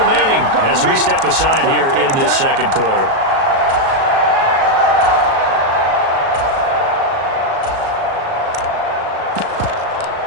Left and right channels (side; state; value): left; late; 37 ms